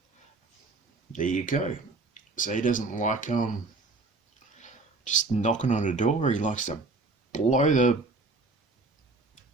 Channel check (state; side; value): quieter; left; 3.5 dB